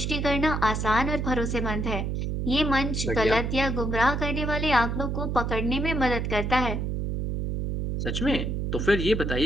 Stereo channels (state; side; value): noise; right; hum, 1 dB below the sound